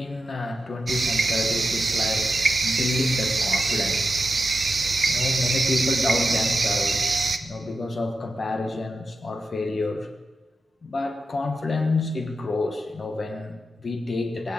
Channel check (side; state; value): both; normal; correlation 0.89